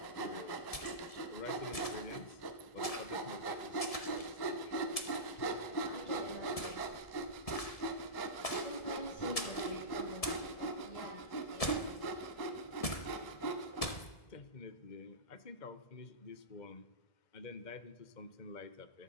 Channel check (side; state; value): right; late; 1.7 ms